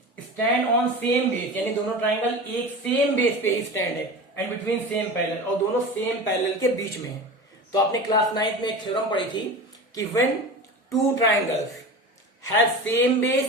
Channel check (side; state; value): both; normal; correlation 0.31